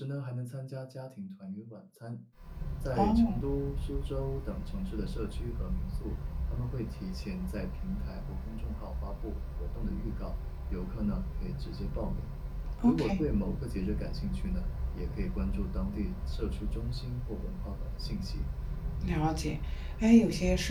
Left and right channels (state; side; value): identical; both; correlation 1.00